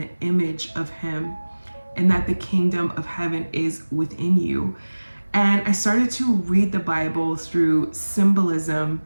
image of him, and that the kingdom of heaven is within you. And I started to read the Bible through symbolism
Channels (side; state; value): both; inverted; correlation -1.00